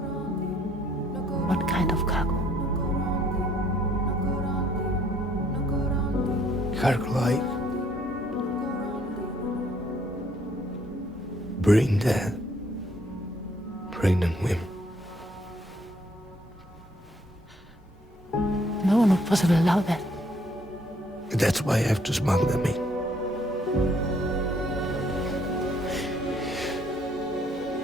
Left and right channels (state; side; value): normal; both; correlation 0.66